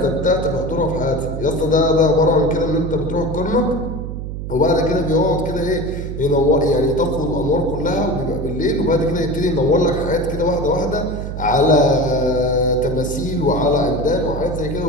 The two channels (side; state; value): right; noise; hum, 6 dB below the sound